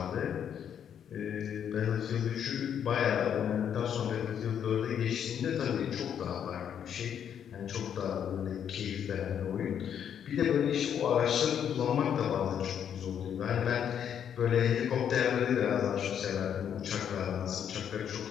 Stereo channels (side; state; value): right; quieter; 8.7 dB